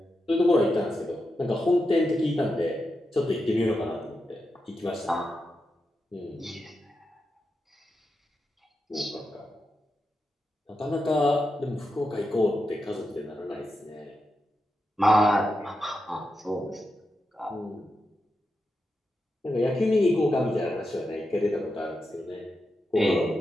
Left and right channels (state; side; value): normal; both; correlation 0.88